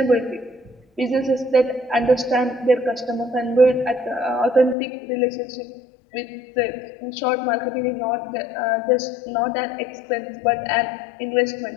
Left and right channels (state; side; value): drops out; right; at 4.8 s